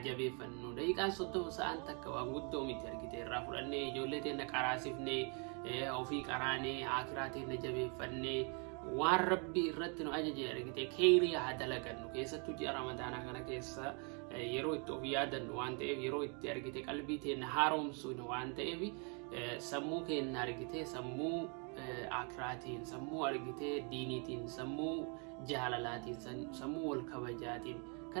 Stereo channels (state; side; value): quieter; left; 36.4 dB